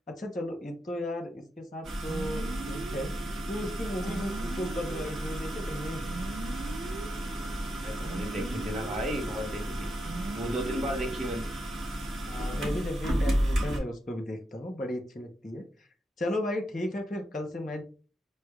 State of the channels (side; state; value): both; normal; correlation 0.84